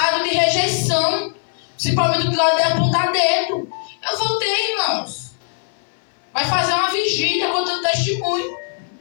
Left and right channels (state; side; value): silent; right; 63 dB below the other